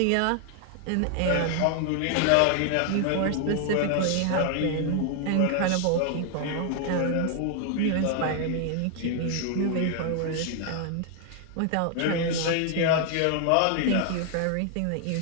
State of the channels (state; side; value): different; both; correlation 0.00